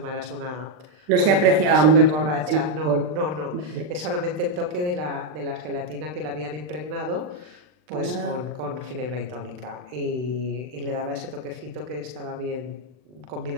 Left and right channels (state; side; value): late; left; 39 ms